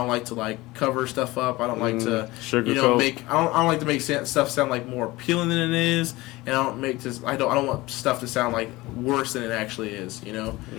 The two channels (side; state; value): right; quieter; 20.1 dB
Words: like to like cover stuff up. I don't like to, you know, I don't like to make stuff sound like more appealing than it is, and I don't want stuff to sound like worse than it actually is. You know,